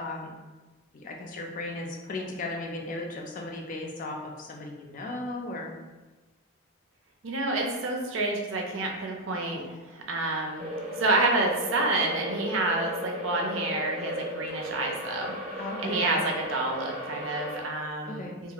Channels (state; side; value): normal; both; correlation 0.01